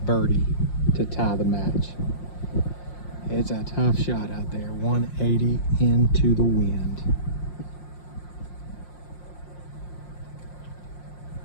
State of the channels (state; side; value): late; right; 5.6 ms